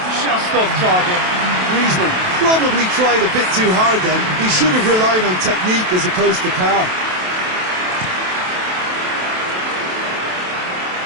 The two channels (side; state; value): left; late; 27 ms